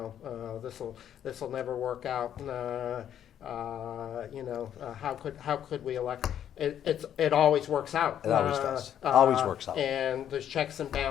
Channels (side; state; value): right; quieter; 10.0 dB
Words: this'll never work out. How could we elect? It always works out. It always does. Always works out. And there's checks and